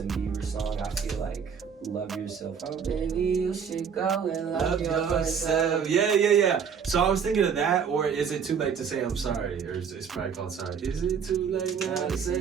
Bieber song, I feel like Love Yourself. Oh baby, you should go and love yourself. Yeah. So I was thinking of that, or is it too late to say I'm sorry? Or it's probably called Sorry. Is it too late now to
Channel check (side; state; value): left; quieter; 6.9 dB